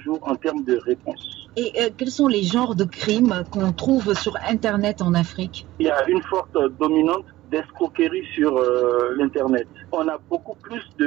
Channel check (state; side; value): quieter; left; 16.7 dB